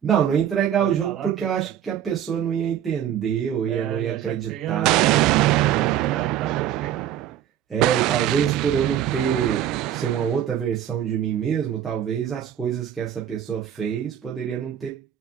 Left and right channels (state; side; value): quieter; left; 10.4 dB